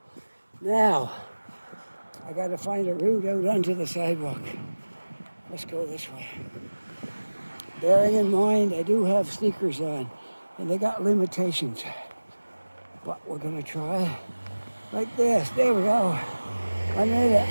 Now, I got to find a route out onto the sidewalk. Let's go this way. Bearing in mind, I do have sneakers on, and they got limitations. But we're going to try like this. There we go. I made it.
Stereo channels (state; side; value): inverted; both; correlation -1.00